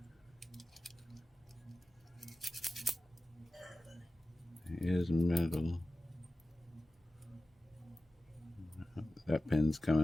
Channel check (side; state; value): both; normal; correlation 0.95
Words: It is metal. That pin's